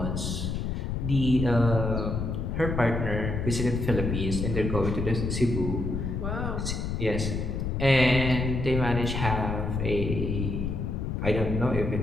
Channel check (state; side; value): noise; left; rumble, 2 dB below the sound